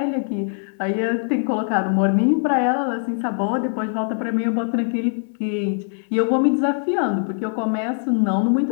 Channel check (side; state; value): right; silent; 60 dB below the other